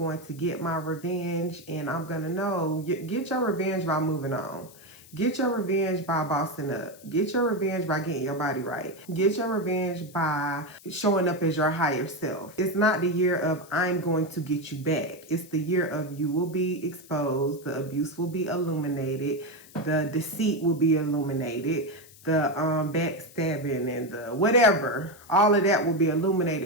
to get my revenge, and I'm going to know. Get your revenge by moving on. Get your revenge by bossing up. Get your revenge by getting your body right. Get your revenge by showing up as your higher self. It's not the year of, I'm going to get you back. It's the year of, you will be exposed. The abuse will be illuminated. The deceit will be illuminated. The backstabbing and the whatever, all of that will be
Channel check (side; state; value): left; noise; hiss, 22 dB below the sound